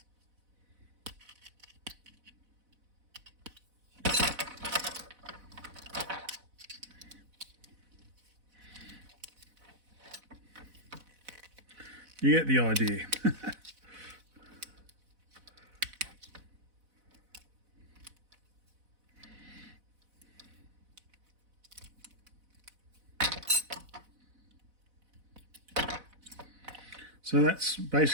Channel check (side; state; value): left; late; 4.0 ms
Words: You get the idea. So that's